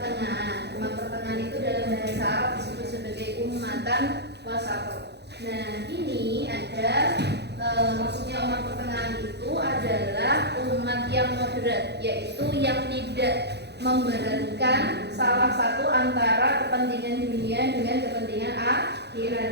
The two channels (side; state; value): left; late; 0.49 ms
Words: Umat pertengahan itu dalam bahasa Arab disebut sebagai ummatan wasat. Nah, ini ada maksudnya umat pertengahan itu adalah umat yang moderat, yaitu yang tidak memberatkan salah satu antara kepentingan dunia dengan kepentingan